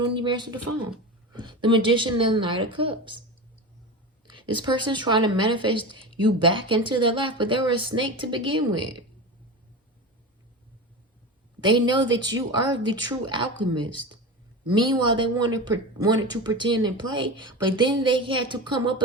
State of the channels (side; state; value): both; normal; correlation 0.26